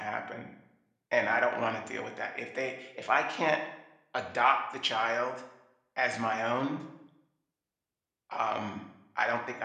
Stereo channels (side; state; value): both; identical; correlation 1.00